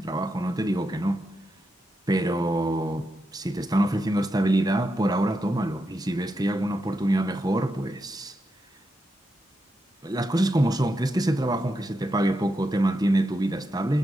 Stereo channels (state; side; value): normal; both; correlation 0.85